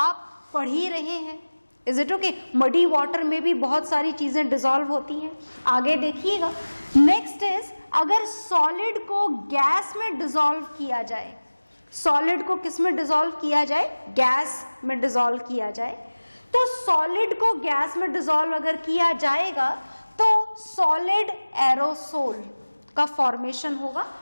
पढ़ ही रहे हैं। Is it okay? Muddy water में भी बहुत सारी चीजें डिसॉल्व होती हैं। आगे देखिएगा, नेक्स्ट इज, अगर सॉलिड को गैस में डिसॉल्व किया जाए, सॉलिड को किस में डिसॉल्व किया जाए? गैस में डिसॉल्व किया जाए। तो सॉलिड को गैस में डिसॉल्व अगर किया जाएगा तो सॉलिड एरोसोल का फॉर्मेशन होगा,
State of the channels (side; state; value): both; inverted; correlation -1.00